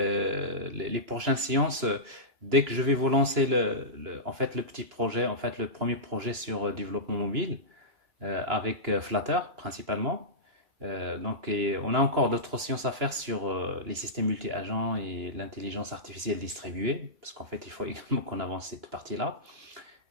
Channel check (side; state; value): left; late; 2.9 ms